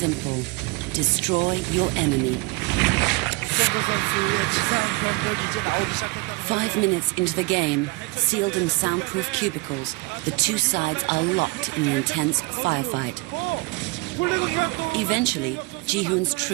Destroy your enemy. 5 minutes into the game, sealed in soundproof cubicles, the 2 sides are locked in an intense firefight. Eventually, Ji-hoon's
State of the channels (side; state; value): left; quieter; 25.3 dB